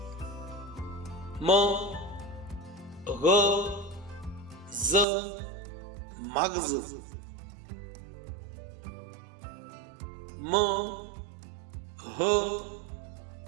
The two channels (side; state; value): left; drops out; at 5.1 s